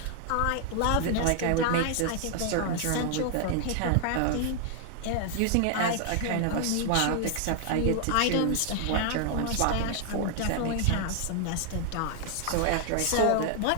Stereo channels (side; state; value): both; different; correlation 0.00